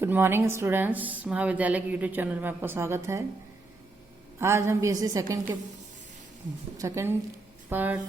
Good morning students, महाविद्यालय के YouTube channel में आपका स्वागत है। आज हम बीएससी सेकंड पार्ट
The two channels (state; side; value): quieter; left; 3.2 dB